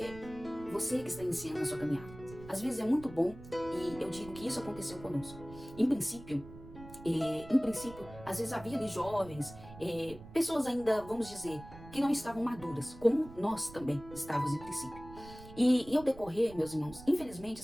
que está iniciando a sua caminhada, às vezes é muito bom, e eu digo que isso aconteceu conosco. Em princípio, às vezes havia ali jovens, pessoas ainda, vamos dizer, que não estavam maduras, como nós também estávamos em princípio. E ao decorrer, meus irmãos, infelizmente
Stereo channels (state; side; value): noise; right; rumble, 16 dB below the sound